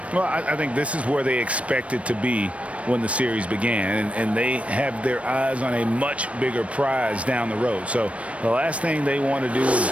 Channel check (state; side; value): late; left; 0.063 ms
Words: Well, I think this is where they expected to be when the series began, and they have their eyes on a much bigger prize down the road. So the last thing they want to do is